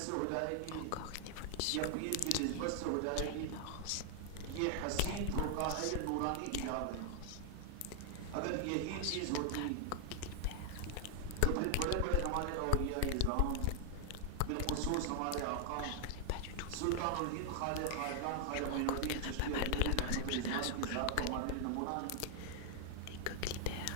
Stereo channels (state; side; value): different; both; correlation 0.00